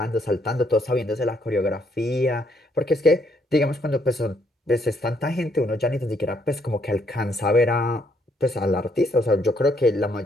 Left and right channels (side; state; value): both; normal; correlation 0.71